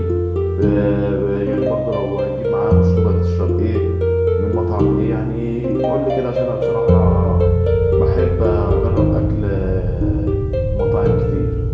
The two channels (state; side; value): identical; both; correlation 1.00